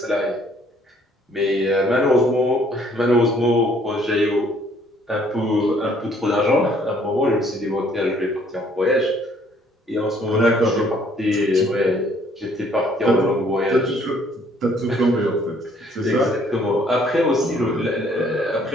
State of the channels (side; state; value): both; normal; correlation 0.62